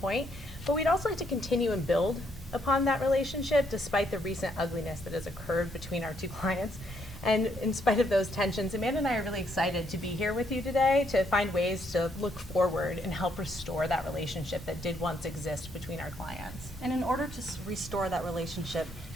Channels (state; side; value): normal; both; correlation 0.73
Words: but we'd also like to continue and build upon that relationship despite the recent ugliness that has occurred between our two clients. And in spite of those tensions, Amanda and I are really excited to be here with you today to find ways to look forward and help restore that relationship that did once exist between our clients. And in order to restore that relationship,